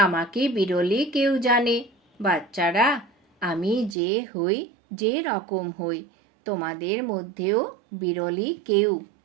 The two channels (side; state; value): left; drops out; at 4.0 s